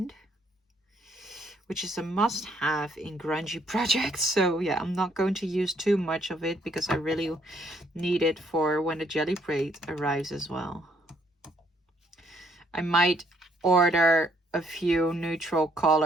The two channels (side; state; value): both; normal; correlation 0.68